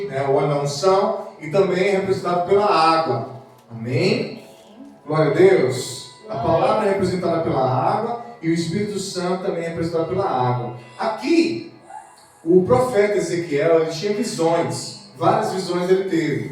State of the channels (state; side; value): identical; both; correlation 1.00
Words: o óleo da unção, e também é representado pela água. Amém? Glória a Deus. A palavra é representada pela água e o Espírito Santo também é representado pela água. Aqui, o profeta Ezequiel, ele tinha visões, várias visões ele